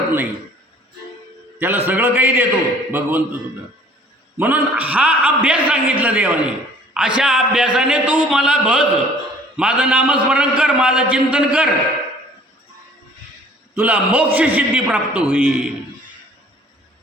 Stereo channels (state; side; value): normal; both; correlation 0.53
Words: नाही. त्याला सगळं काही देतो भगवंत सुद्धा. म्हणून हा अभ्यास सांगितला देवाने. अशा अभ्यासाने तू मला बघ, माझं नामस्मरण कर, माझं चिंतन कर, तुला मोक्ष सिद्धी प्राप्त होईल.